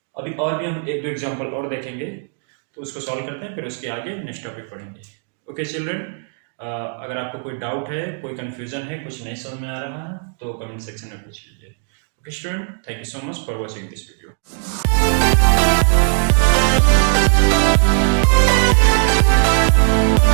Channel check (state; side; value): silent; left; 56 dB below the other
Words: अभी और भी हम 1-2 एग्जांपल और देखेंगे, तो उसको सॉल्व करते हैं, फिर उसके आगे नेक्स्ट टॉपिक पढ़ेंगे। ओके चिल्ड्रन, अगर आपको कोई डाउट है, कोई कंफ्यूजन है, कुछ नहीं समझ में आ रहा है तो कमेंट सेक्शन में पूछ लीजिए। Okay, student, thank you so much for watching this video.